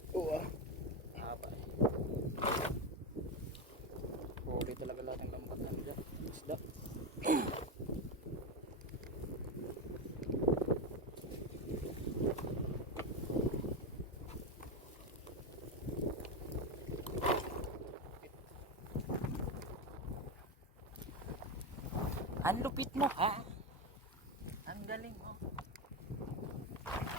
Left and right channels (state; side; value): normal; both; correlation 0.12